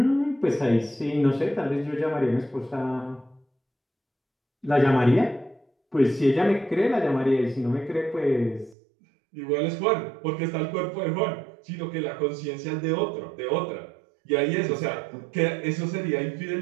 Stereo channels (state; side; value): drops out; left; at 8.8 s